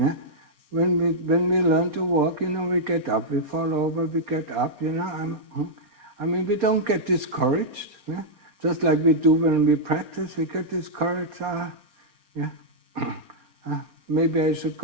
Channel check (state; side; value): late; left; 4.2 ms